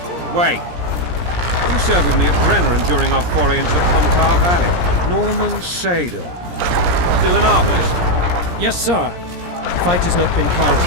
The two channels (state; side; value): late; left; 17 ms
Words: Wait. You served with me at Brenneran during our foray into the Pontar Valley. Norman Sador. Still an arbalist? Yes, sir. Fight has not been